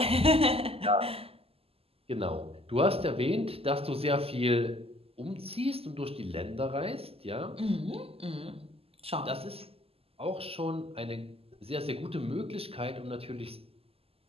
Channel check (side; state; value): left; late; 0.28 ms